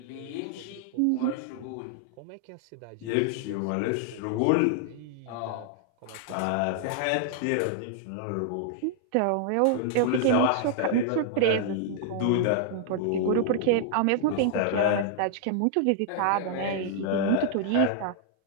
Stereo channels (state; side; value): different; both; correlation -0.01